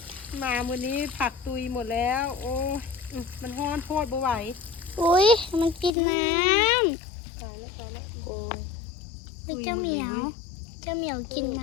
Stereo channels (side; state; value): right; drops out; at 5.9 s